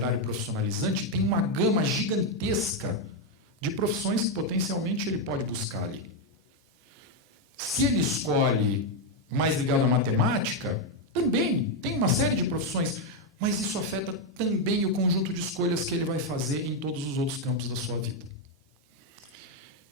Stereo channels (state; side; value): normal; both; correlation 0.03